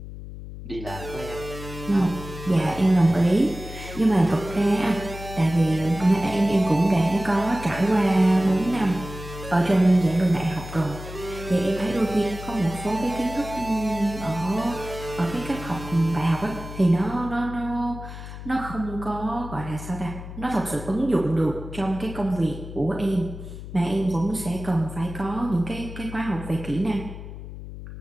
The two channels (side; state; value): left; noise; hum, 11 dB below the sound